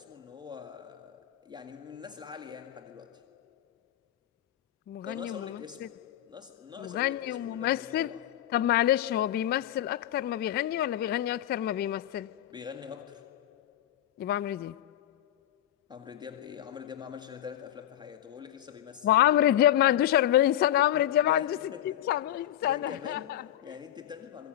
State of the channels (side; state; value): right; quieter; 12.2 dB